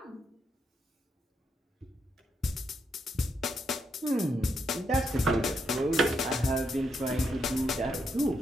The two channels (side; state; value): both; normal; correlation 0.79